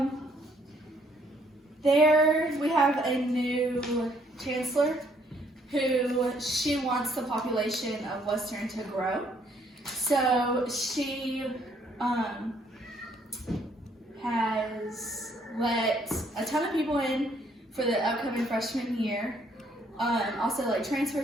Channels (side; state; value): both; normal; correlation 0.66